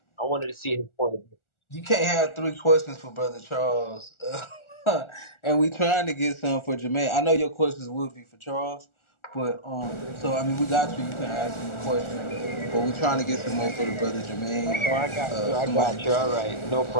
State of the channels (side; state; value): right; late; 1.4 ms